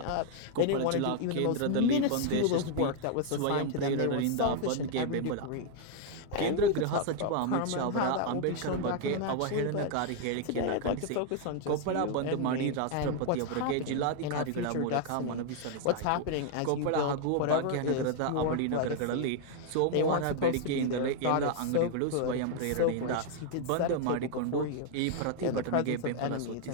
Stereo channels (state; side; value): different; both; correlation 0.00